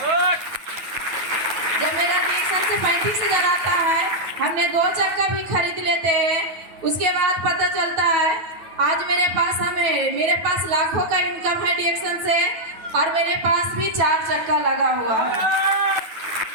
जब मेरा डिएक्शन से 35,000 आता है, हमने 2 चक्का भी खरीद लेते हैं। उसके बाद पता चलता है आज मेरे पास लाखों का इनकम है डिएक्शन से और मेरे पास भी 4 चक्का लगा हुआ है।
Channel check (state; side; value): late; left; 9.2 ms